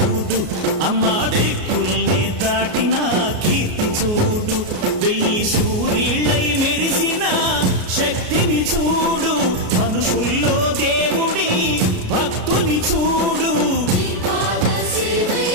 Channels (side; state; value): left; late; 33 ms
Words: అమ్మ దిక్కుల్ని దాటిన కీర్తి చూడు, 1000 సూర్యుళ్ళై మెరిసిన శక్తిని చూడు, మనుషుల్లో దేవుడి భక్తుని చూడు.